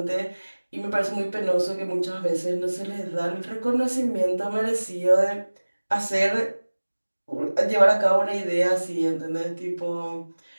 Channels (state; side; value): inverted; both; correlation -1.00